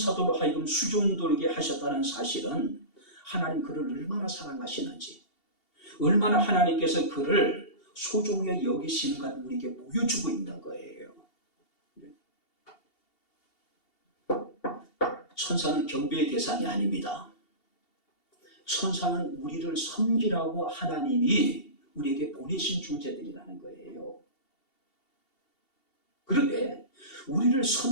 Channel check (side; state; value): right; late; 2.7 ms